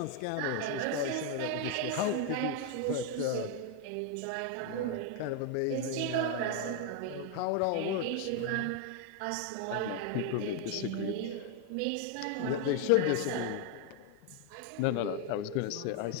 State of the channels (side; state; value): both; different; correlation 0.01